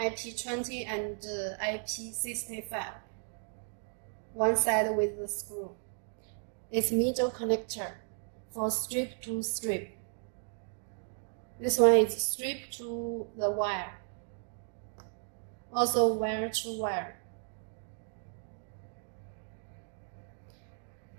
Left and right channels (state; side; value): silent; left; 55 dB below the other